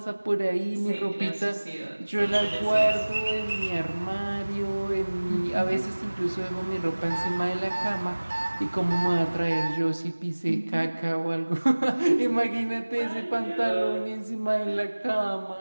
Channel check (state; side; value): inverted; both; correlation -1.00